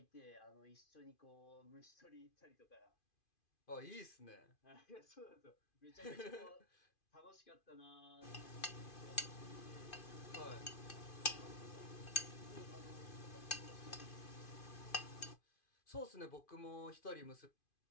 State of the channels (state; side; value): late; right; 2.5 ms